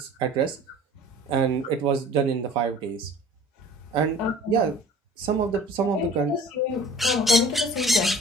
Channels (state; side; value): normal; both; correlation 0.46